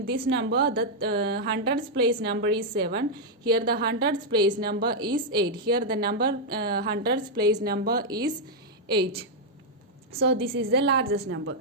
number, the hundreds place number is 7. Here the hundreds place number is 8. Here the number hundreds place number is 8. So this is the largest number.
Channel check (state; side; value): normal; both; correlation -0.03